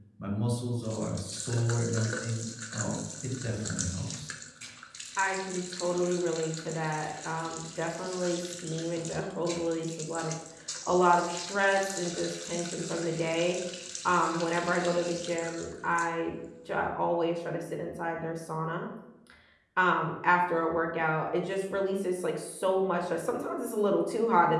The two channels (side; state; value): both; identical; correlation 1.00